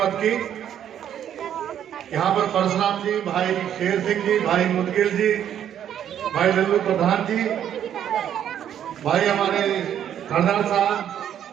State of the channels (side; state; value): left; quieter; 9.9 dB